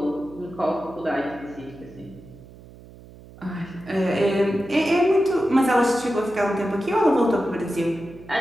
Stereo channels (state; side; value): noise; right; hum, 20 dB below the sound